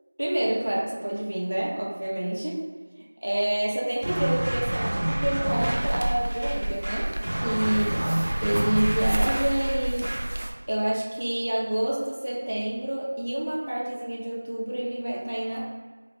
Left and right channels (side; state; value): both; inverted; correlation -1.00